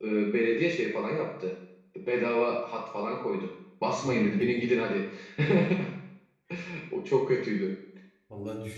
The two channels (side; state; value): both; identical; correlation 1.00